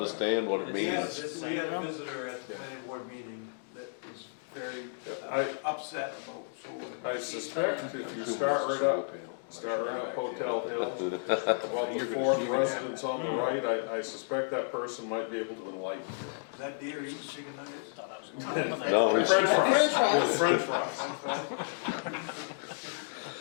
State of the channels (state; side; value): silent; right; digital silence